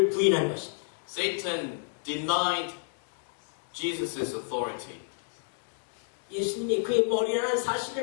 부인한 것입니다. Satan denied Jesus' authority. 예수님이 그의 머리라는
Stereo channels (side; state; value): right; silent; digital silence